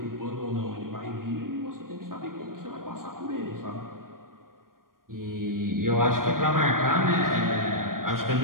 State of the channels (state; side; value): late; left; 0.91 ms